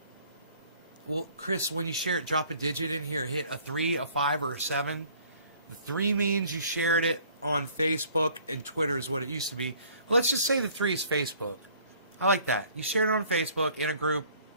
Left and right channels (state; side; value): inverted; both; correlation -0.56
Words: Well, Chris, when you share it, drop a digit in here. Hit a 3, a 5, or a 7. The 3 means you shared it on Facebook, and Twitter is what it used to be. Well, let's just say the 3 is Facebook. I like that. You shared it on Facebook in a group,